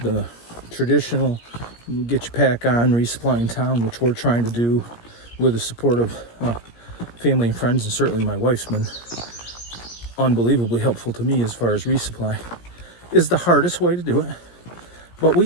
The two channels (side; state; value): right; late; 17 ms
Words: traditional get your pack on, resupply in town, which we're trying to do with the support of family and friends, and certainly my wife's been unbelievably helpful to me as far as resupply, is the hardest way to do it. But we